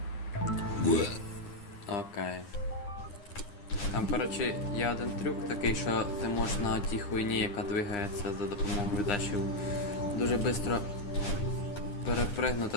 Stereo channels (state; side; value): late; right; 9.9 ms